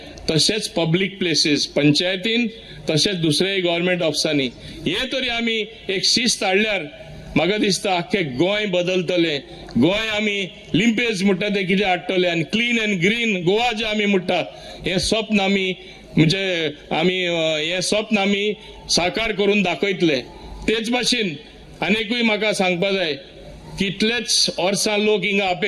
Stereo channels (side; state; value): both; identical; correlation 1.00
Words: तशेंच पब्लीक प्लेसीस पंचायतीन तशेंच दुसऱ्याय गव्हर्मेंट ऑफिसांनी हे तरी आमी एक शिस्त हाडल्यार म्हाका दिसता आख्खे गोंय बदलतले. गोंय आमी लिंपेज म्हणटा ते कितें हाडटले आनी क्लीन अँड ग्रीन गोवा जे आमी म्हणटा हे स्वप्न आमी म्हणजे आमी हे स्वप्न आमी साकार करून दाखयतले. तेच भाशेन आनीकूय म्हाका सांगपा जाय कितलेच वर्सां लोक हिंगा